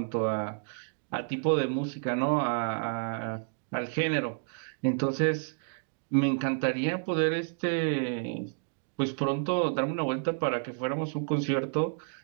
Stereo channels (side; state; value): left; silent; digital silence